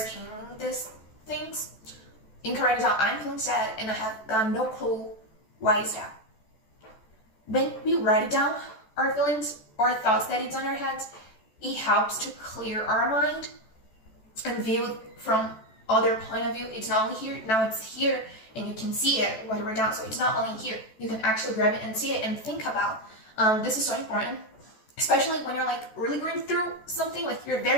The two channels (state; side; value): late; right; 14 ms